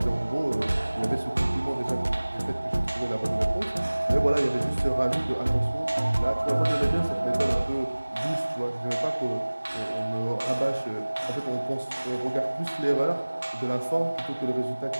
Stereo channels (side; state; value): both; inverted; correlation -1.00